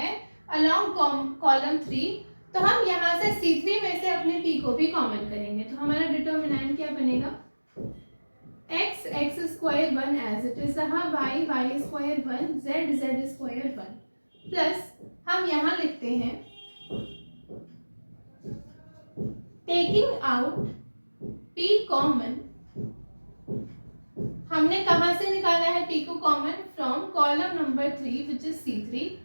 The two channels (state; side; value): inverted; both; correlation -1.00